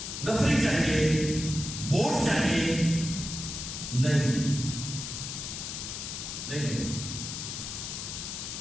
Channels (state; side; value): noise; left; hiss, 6 dB below the sound